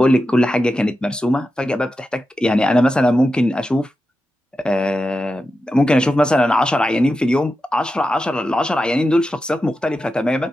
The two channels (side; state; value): both; normal; correlation 0.90